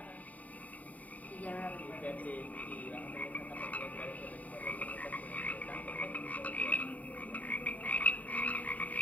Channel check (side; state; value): right; late; 0.072 ms